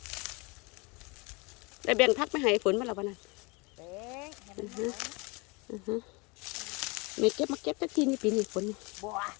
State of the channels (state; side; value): quieter; right; 28.5 dB